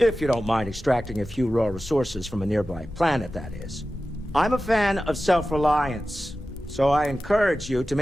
you don't mind extracting a few raw resources from a nearby planet, that is. I'm a fan of self-reliance, so I encourage you to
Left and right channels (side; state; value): both; normal; correlation 0.94